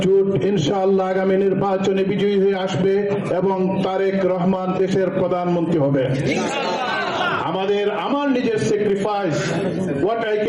জোট ইনশাআল্লাহ আগামী নির্বাচনে বিজয়ী হয়ে আসবে এবং তারেক রহমান দেশের প্রধানমন্ত্রী হবে। আমার নিজের sacrifice, what I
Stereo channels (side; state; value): both; identical; correlation 1.00